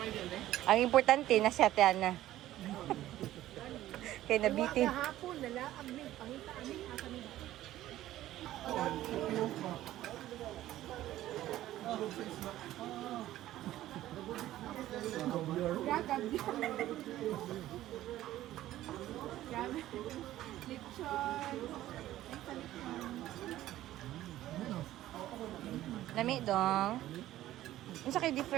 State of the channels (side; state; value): left; quieter; 14.2 dB